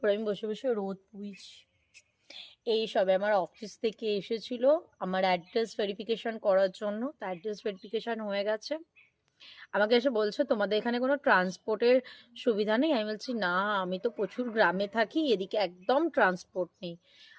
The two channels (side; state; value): both; identical; correlation 1.00